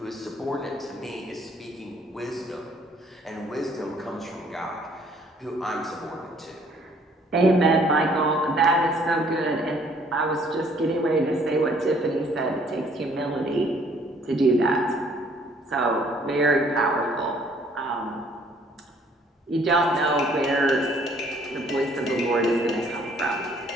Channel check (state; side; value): normal; both; correlation 0.61